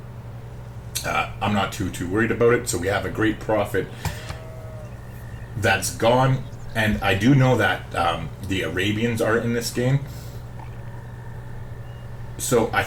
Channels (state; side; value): identical; both; correlation 1.00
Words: I'm not too worried about it. So we have a great prophet that's gone, and I do know that the Arabians are in this game. So I